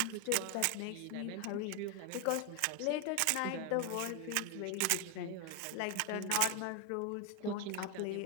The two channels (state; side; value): different; both; correlation 0.01